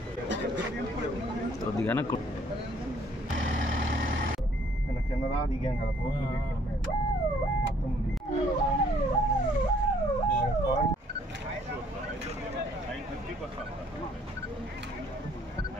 కిందరా దిగాం కదా బోట్లు మొత్తం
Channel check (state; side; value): normal; both; correlation 0.62